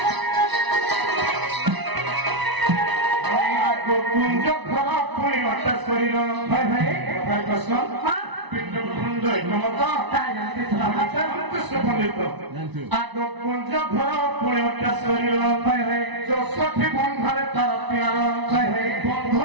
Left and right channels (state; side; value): late; left; 1.0 ms